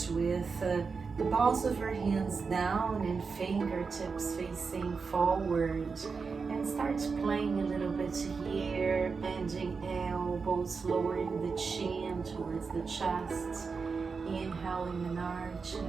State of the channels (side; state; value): left; quieter; 5.0 dB